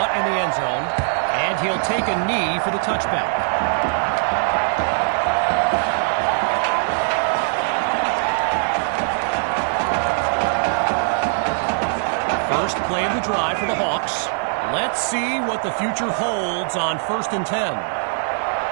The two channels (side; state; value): left; silent; 65 dB below the other